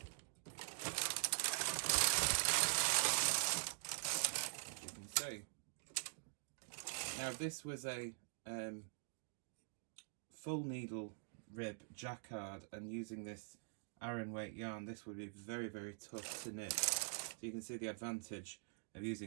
you can see. Now if this was a full needle rib jacquard and using this Aran weight yarn, this would be very, very tough to knit. So you can see the advantage of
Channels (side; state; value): left; silent; digital silence